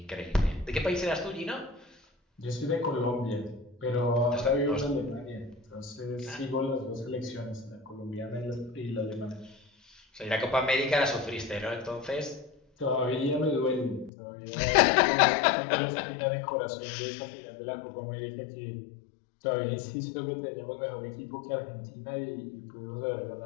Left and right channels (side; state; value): right; drops out; at 14.1 s